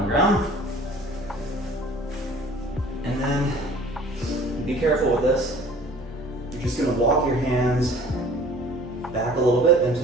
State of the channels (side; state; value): both; normal; correlation 0.49